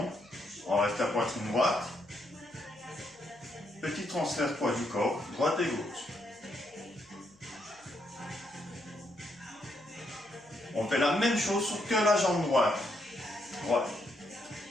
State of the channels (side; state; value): left; noise; hum, 30 dB below the sound